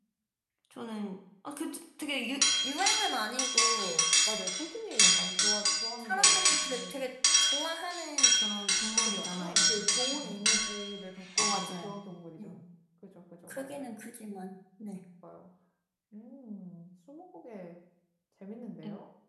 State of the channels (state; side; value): identical; both; correlation 1.00